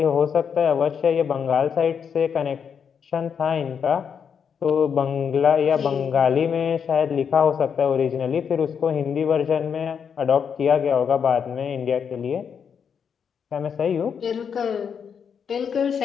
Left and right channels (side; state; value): right; quieter; 7.1 dB